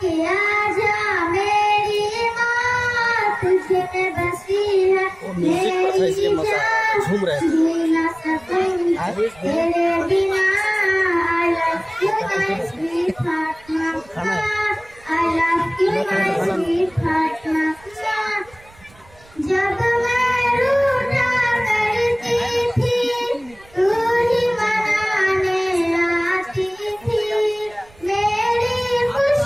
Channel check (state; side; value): noise; right; rumble, 26 dB below the sound